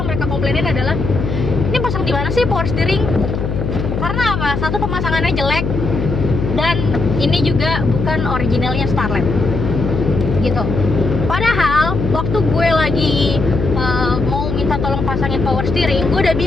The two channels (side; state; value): left; noise; hum, 3 dB below the sound